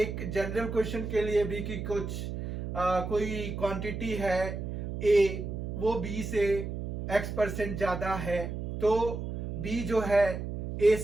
जनरल क्वेश्चन के लिए भी कि कोई क्वांटिटी है ए, वो बी से x% ज्यादा है, तो बी जो है ए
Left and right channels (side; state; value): right; noise; hum, 5 dB below the sound